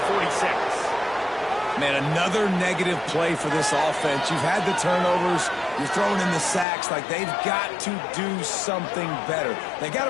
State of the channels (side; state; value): right; drops out; at 6.7 s